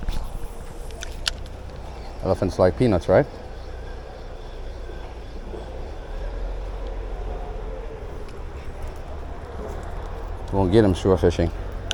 Elephants like peanuts, right? Won't get him shore fishing.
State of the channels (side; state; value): both; identical; correlation 1.00